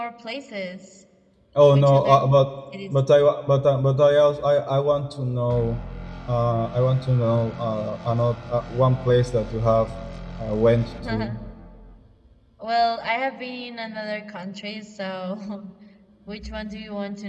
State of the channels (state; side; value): identical; both; correlation 1.00